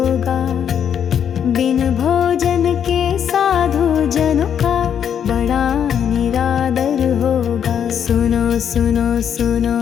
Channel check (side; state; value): right; quieter; 8.5 dB